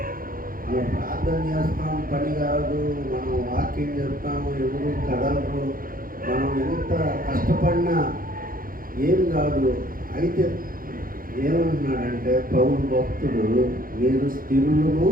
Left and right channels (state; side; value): late; left; 0.41 ms